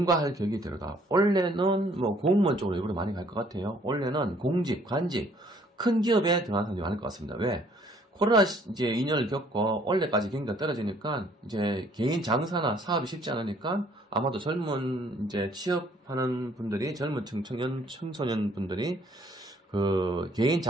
격이 들어가. 원래는 뭐 공무원 쪽으로 일부러 많이 갈 것 같아요. 원래는 공직, 관직, 큰 기업에 들어가는 사람들이 많을 것 같습니다. 왜? 코로나 이제 2년을 겪고 원래까지 경기가 떨어지니까 이제 개인 장사나 사업이 쉽지 않으니까 아마도 젊은 이제 취업하는 분들이 젊은 청소년 분들이 그 개인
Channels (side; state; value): both; normal; correlation 0.61